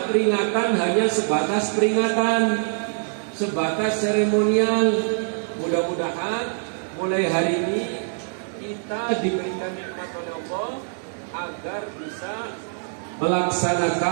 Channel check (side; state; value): left; silent; digital silence